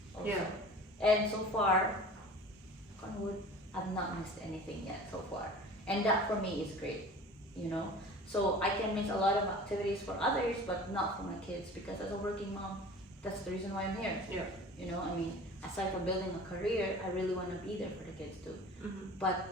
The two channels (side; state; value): both; normal; correlation 0.41